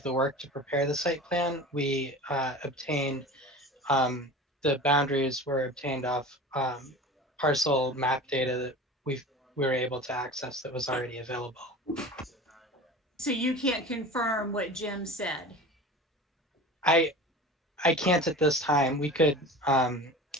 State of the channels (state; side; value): normal; both; correlation 0.35